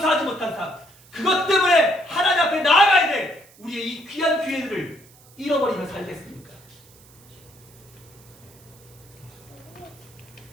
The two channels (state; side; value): noise; right; hiss, 26 dB below the sound